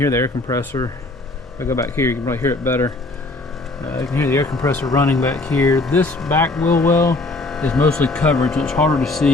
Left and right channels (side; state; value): right; quieter; 3.0 dB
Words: the air compressor. If I go back here, you can probably hear it better. You can hear the air compressor running back here. This back wheel well is mostly covered, so it's harder to